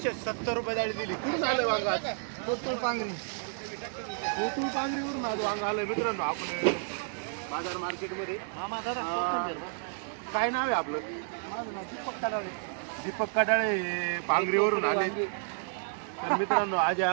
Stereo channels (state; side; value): silent; left; 57 dB below the other